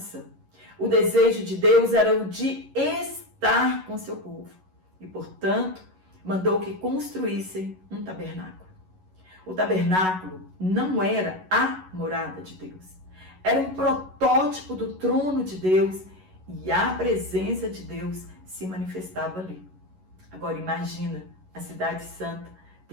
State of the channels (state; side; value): late; left; 11 ms